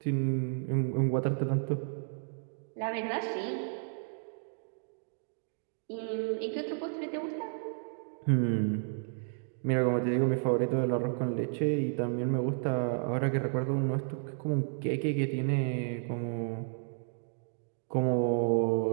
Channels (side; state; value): left; silent; digital silence